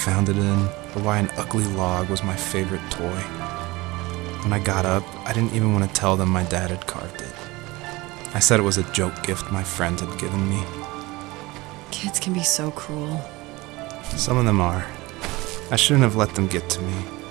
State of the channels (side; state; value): left; quieter; 21.6 dB